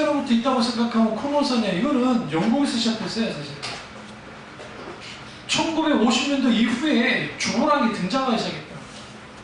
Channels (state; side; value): identical; both; correlation 1.00